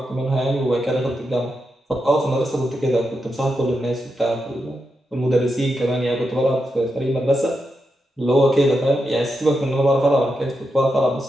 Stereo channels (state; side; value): normal; both; correlation 0.86